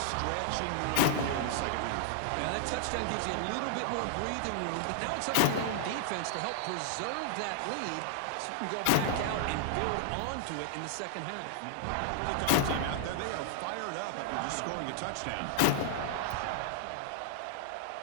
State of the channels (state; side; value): different; both; correlation -0.01